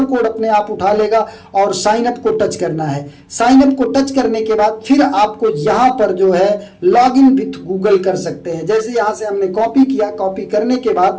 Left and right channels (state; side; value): identical; both; correlation 1.00